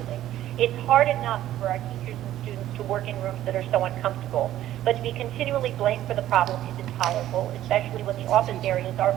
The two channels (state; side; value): quieter; left; 13.1 dB